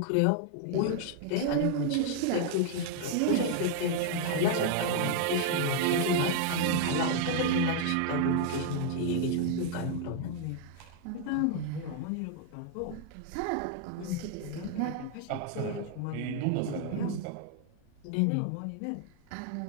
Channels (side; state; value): both; different; correlation 0.00